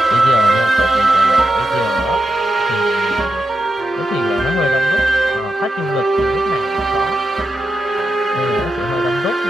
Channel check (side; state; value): both; normal; correlation 0.88